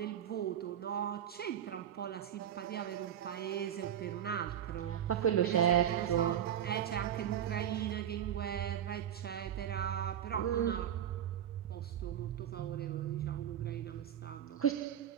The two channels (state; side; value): quieter; left; 10.0 dB